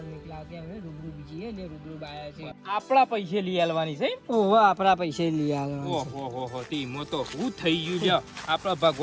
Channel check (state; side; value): identical; both; correlation 1.00